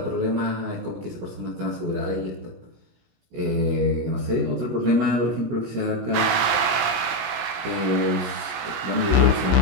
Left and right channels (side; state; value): left; late; 17 ms